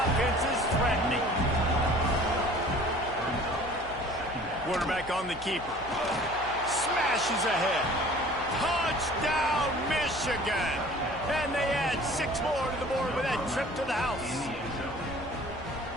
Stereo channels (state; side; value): noise; left; hum, 16 dB below the sound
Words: is threatening. Quarterback on the keeper. Smashes ahead. Touchdown, Michigan! And they add 6 more to the board with that trip to the house.